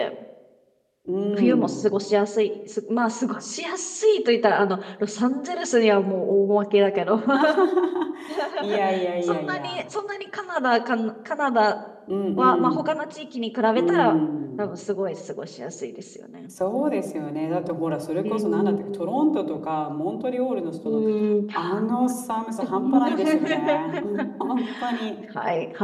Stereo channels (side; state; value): both; identical; correlation 1.00